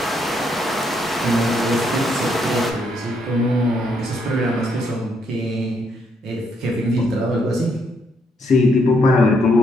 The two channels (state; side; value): normal; both; correlation 0.74